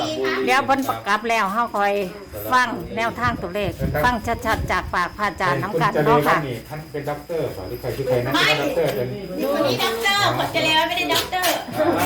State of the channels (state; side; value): identical; both; correlation 1.00